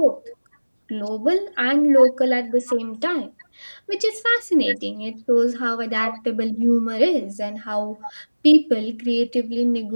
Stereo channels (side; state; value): both; inverted; correlation -1.00